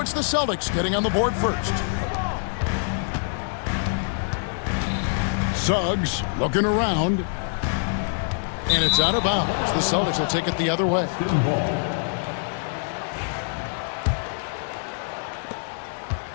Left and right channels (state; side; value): silent; right; digital silence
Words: it's the Celtics getting on the board first. Suggs looking around, and it's out of bounds. The Celtics will take it the other way.